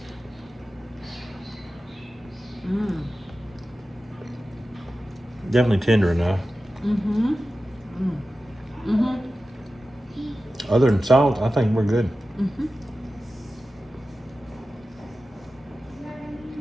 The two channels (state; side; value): normal; both; correlation 0.94